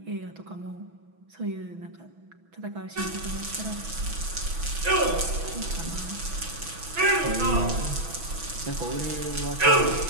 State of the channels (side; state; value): left; late; 6.1 ms